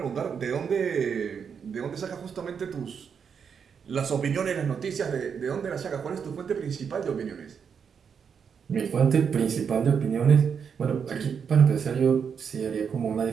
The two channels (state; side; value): quieter; left; 6.8 dB